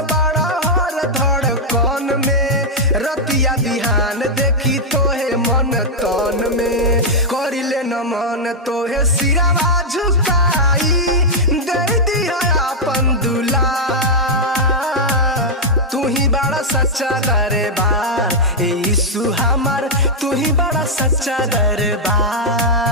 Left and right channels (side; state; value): both; normal; correlation -0.04